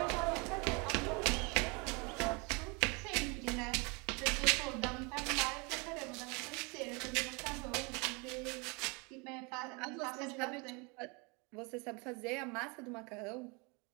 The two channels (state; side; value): quieter; left; 30.3 dB